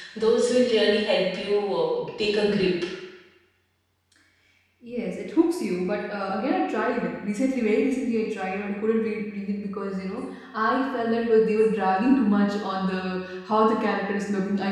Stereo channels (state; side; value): identical; both; correlation 1.00